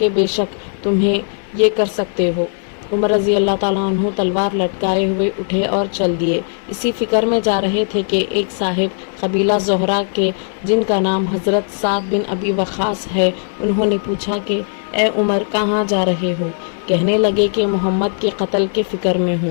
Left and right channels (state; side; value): silent; right; 68 dB below the other